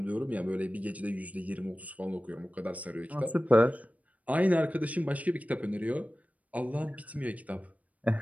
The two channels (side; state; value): left; late; 0.070 ms